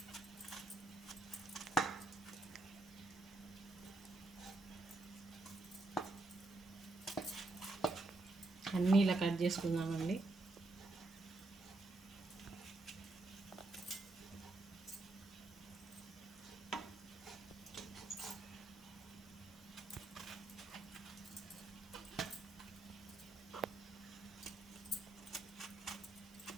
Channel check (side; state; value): left; quieter; 3.0 dB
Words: అన్నీ ఇలా కట్ చేసుకుందామండి.